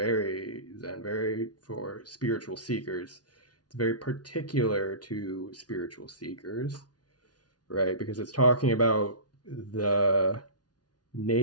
Zen, very for spiritual seekers. It's very particular to spiritual seekers, right? Because it's talking about the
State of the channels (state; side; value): late; right; 0.69 ms